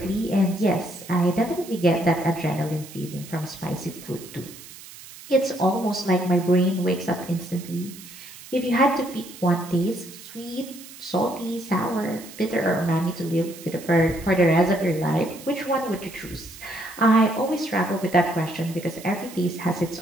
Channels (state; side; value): noise; right; hiss, 17 dB below the sound